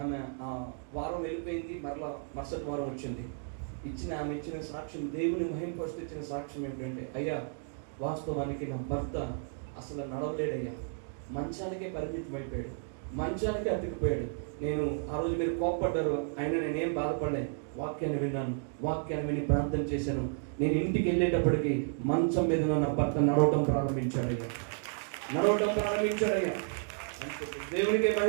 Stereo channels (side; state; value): left; silent; 56 dB below the other